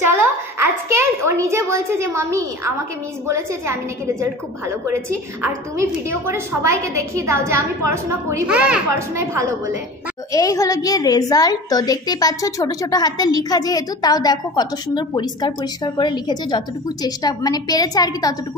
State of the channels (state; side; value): normal; both; correlation 0.37